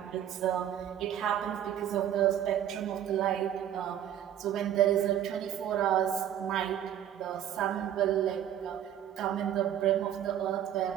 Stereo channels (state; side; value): quieter; left; 10.6 dB